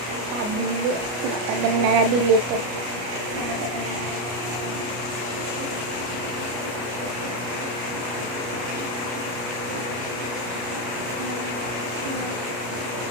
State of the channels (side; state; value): left; late; 33 ms